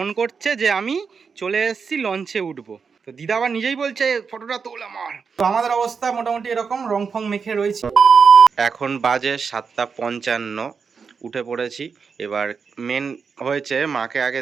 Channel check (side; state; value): left; quieter; 5.7 dB